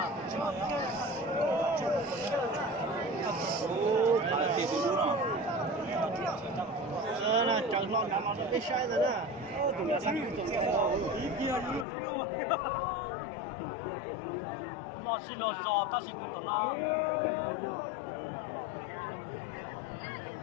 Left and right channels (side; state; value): right; drops out; at 11.9 s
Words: Ô, phải tiền từ đúng không? Nè, chẳng lo nằm ở cái sai rồi nè. Tụi nó sang tụi nó ý kia luôn. Mà xin lo giò ta xin tụi nó.